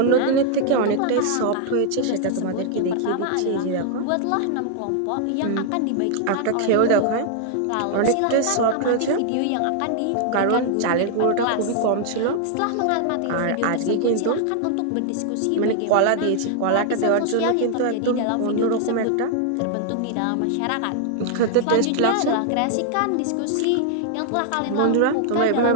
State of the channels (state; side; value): different; both; correlation 0.00